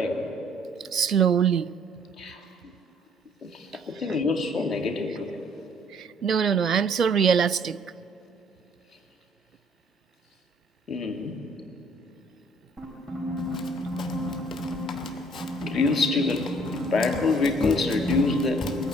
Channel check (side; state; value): both; normal; correlation 0.60